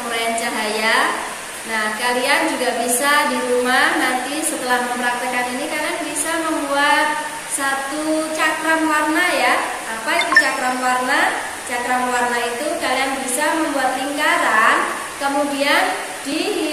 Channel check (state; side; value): identical; both; correlation 1.00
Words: cahaya. Nah, kalian juga bisa di rumah nanti setelah mempraktekkan ini kalian bisa membuat satu cakram warna ya. Apa itu cakram warna? Cakram warna itu kalian bisa membuat lingkaran, kemudian